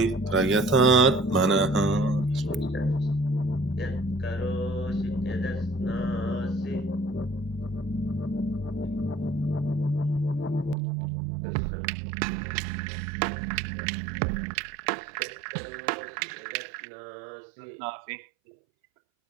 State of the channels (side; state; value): left; drops out; at 10.8 s